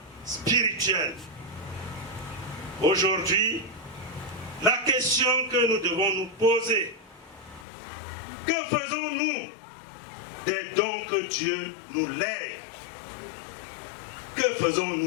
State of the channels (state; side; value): drops out; right; at 7.7 s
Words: spirituel. Aujourd'hui, la question que nous devons nous poser, que faisons-nous des dons que Dieu nous lègue? Que